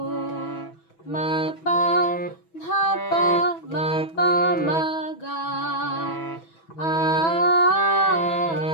মাপা ধাপা মাপা মাগা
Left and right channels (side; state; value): right; late; 6.1 ms